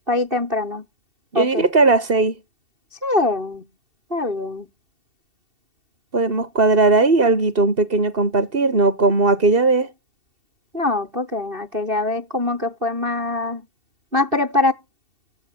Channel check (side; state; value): left; late; 2.7 ms